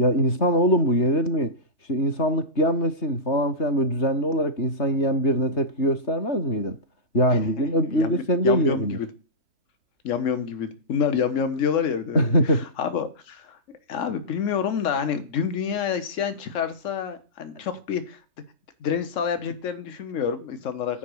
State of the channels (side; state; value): right; late; 3.6 ms